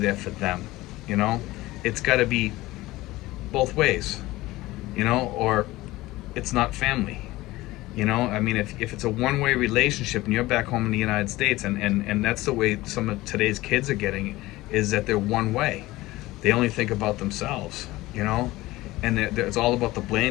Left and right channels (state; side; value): quieter; right; 18.5 dB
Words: for them, you know. It's got to be both ways, you know, or it's not family. You know, I mean, if it's a one-way relationship and you're back home in the United States, and that's the way some of today's kids are getting, is that they're one way. They only think about themselves, you know, and it's all about the